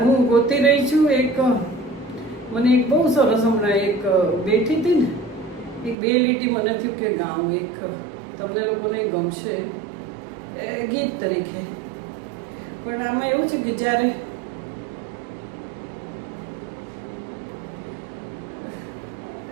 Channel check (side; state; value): left; drops out; at 6.0 s